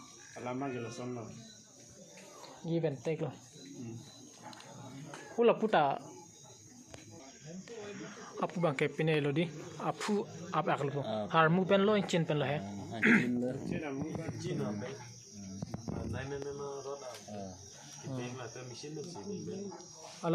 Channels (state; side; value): identical; both; correlation 1.00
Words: alama gelo sono give and take lo hula puta apu bang ke pine lo di apu ap akal po har mu pen lo chin pen lo he